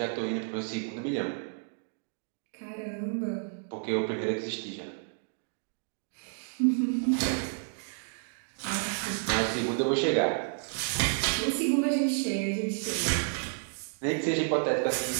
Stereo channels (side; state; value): left; silent; digital silence